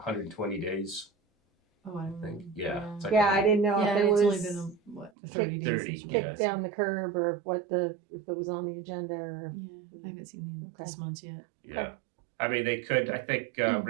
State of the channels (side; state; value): left; drops out; at 5.1 s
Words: days. Oh, I don't know. think, yeah. It's like Yeah, I didn't know Yeah, if it it's only was been 30 days. 30, since we- yeah. kicked down the curb or if it was on the agenda or. Yeah, I haven't seen the Okay. response yet. Yeah. I mean, they could, I think